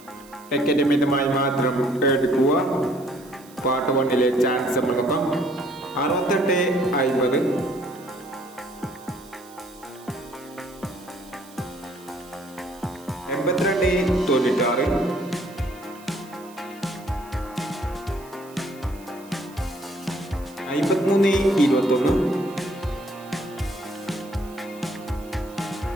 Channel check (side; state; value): right; noise; hiss, 23 dB below the sound